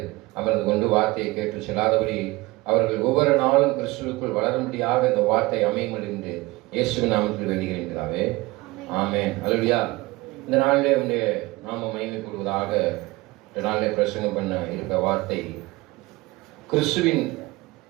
அமர்ந்து கொண்டு வார்த்தையை கேட்டு செல்லாதபடி அவர்கள் ஒவ்வொரு நாளும் கிறிஸ்துவுக்குள் வளரும்படியாக இந்த வார்த்தை அமையும் என்று இயேசுவின் நாமத்தில் வேண்டுகிறேன். ஆமென். அல்லேலூயா. இந்த நாளிலே உங்களுடைய நாம மகிமைப்படுவதாக. இந்த நாளிலே பிரசங்கம் பண்ண இருக்க வார்த்தை, கிறிஸ்துவின்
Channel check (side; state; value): left; quieter; 21.5 dB